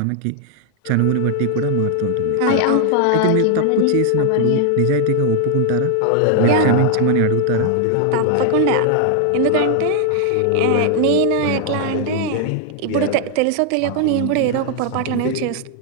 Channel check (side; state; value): both; different; correlation 0.00